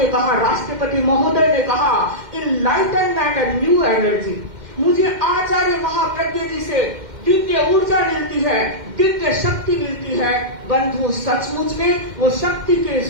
कहा, राष्ट्रपति महोदय ने कहा, इनलाइटनमेंट एंड न्यू एनर्जी, मुझे आचार्य महाप्रज्ञ जी से दिव्य ऊर्जा मिलती है, दिव्य शक्ति मिलती है। बंधु, सचमुच में वो शक्ति के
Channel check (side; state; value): left; late; 2.1 ms